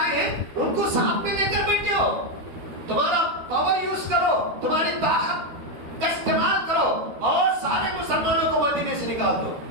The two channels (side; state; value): left; late; 13 ms